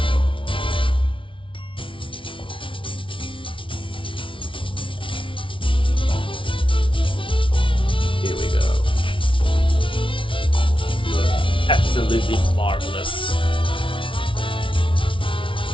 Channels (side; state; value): right; late; 0.25 ms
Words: Here we go. Absolutely marvelous.